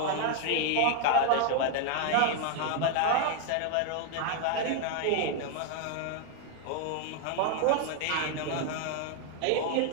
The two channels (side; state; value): both; different; correlation 0.00